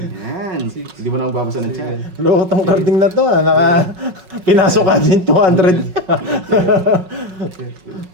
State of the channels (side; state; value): left; late; 5.3 ms